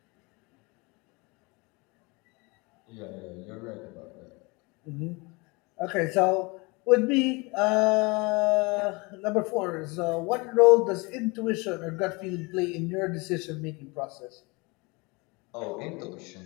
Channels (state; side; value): quieter; right; 27.1 dB